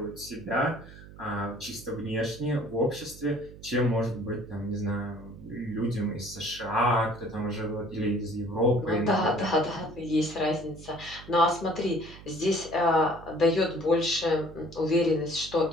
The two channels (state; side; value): noise; right; hum, 17 dB below the sound